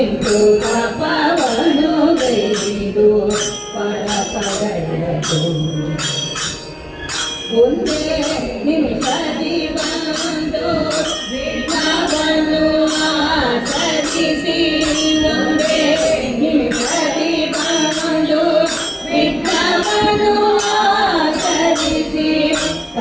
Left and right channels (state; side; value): identical; both; correlation 1.00